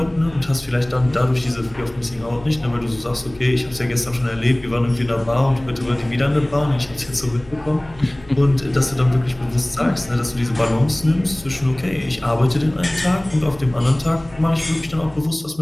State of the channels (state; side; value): noise; left; hum, 23 dB below the sound